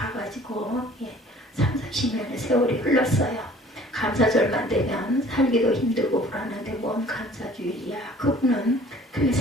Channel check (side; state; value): both; normal; correlation 0.51